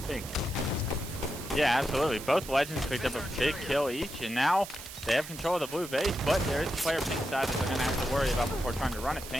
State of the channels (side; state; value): right; noise; hiss, 12 dB below the sound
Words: pink. Yeah, absolutely. Both Legends picked up a big kill each, and now they have control of the blue base, but there is a player pink side that they're going to have to worry about before trying to run it